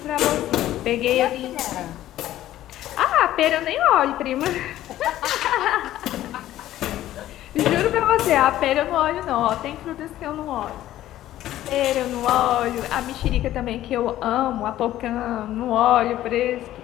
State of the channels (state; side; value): quieter; right; 13.7 dB